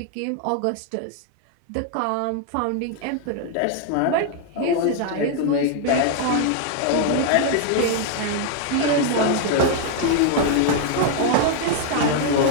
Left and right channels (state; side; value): different; both; correlation 0.00